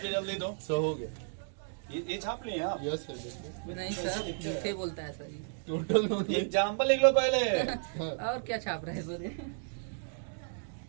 जल्दी दो। 100 हो गया। ये छाप लिए आप। यस सर देखिए नहीं सर, झूठे बोलता है सर ये। टोटल नोट एग्जाम्पल लिख लो पहले। और क्या छाप रहे हैं सर ये?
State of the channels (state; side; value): silent; left; digital silence